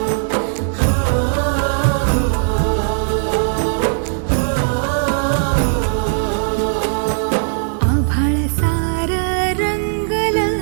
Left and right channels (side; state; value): left; silent; digital silence